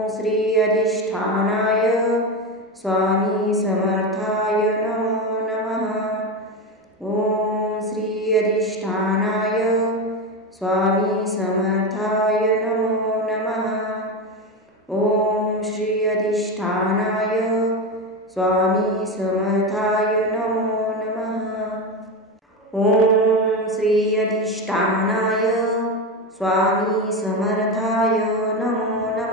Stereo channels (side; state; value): both; normal; correlation 0.17